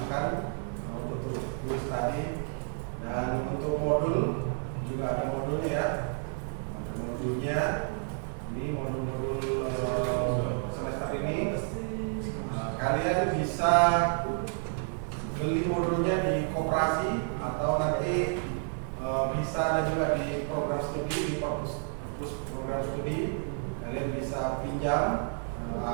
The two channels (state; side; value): silent; left; 57 dB below the other